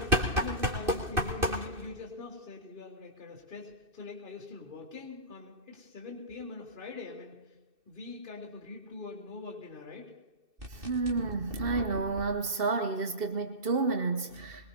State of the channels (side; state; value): left; late; 2.7 ms